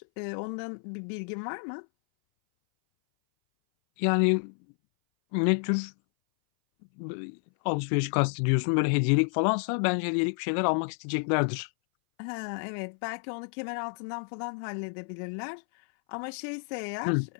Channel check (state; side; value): silent; right; 58 dB below the other